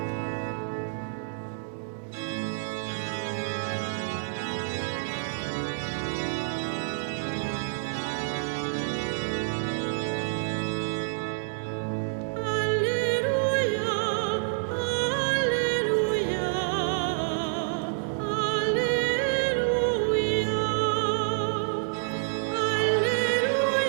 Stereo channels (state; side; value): silent; left; digital silence